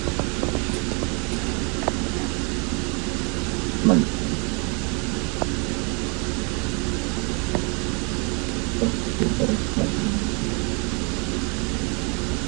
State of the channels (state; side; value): quieter; left; 33.5 dB